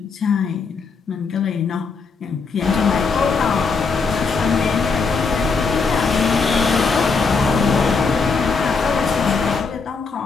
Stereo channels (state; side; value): quieter; right; 4.8 dB